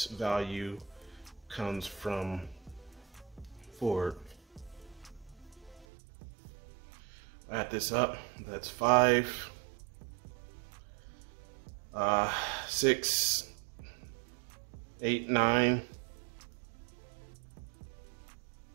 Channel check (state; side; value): drops out; left; at 5.9 s